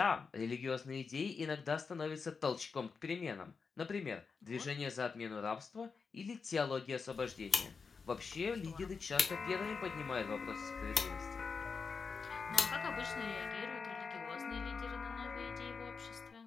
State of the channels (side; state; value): right; quieter; 5.1 dB